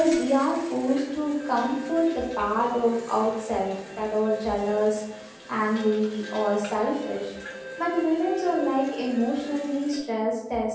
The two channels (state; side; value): identical; both; correlation 1.00